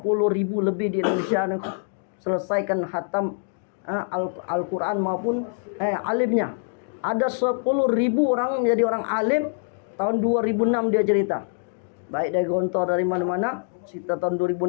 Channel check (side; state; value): right; silent; digital silence